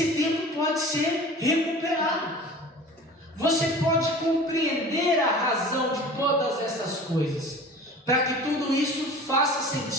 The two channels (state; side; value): normal; both; correlation 0.40